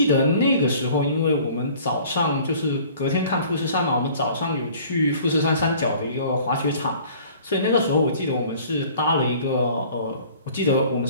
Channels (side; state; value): both; inverted; correlation -0.50